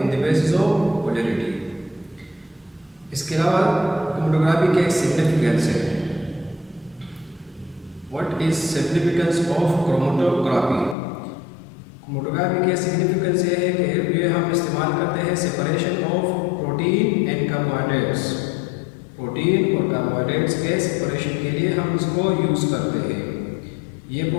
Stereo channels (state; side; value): drops out; right; at 11.0 s